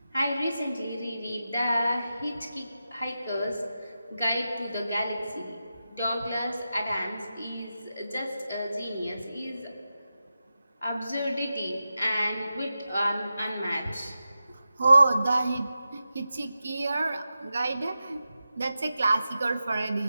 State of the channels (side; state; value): both; inverted; correlation -0.91